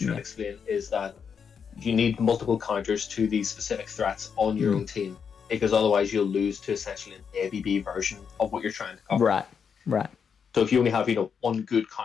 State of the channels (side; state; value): right; quieter; 6.7 dB